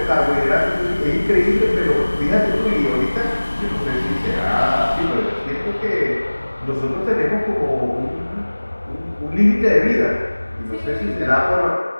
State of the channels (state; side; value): inverted; both; correlation -1.00